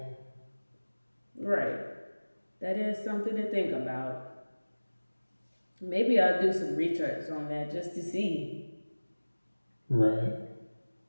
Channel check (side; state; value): both; inverted; correlation -1.00